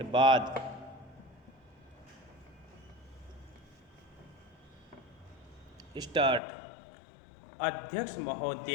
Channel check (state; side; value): drops out; right; at 6.4 s